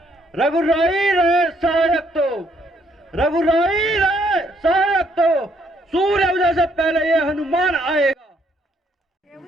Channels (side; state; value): both; normal; correlation 0.69